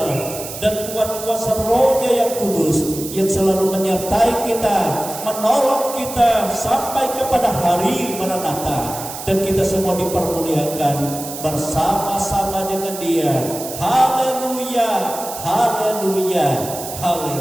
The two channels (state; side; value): noise; right; hiss, 10 dB below the sound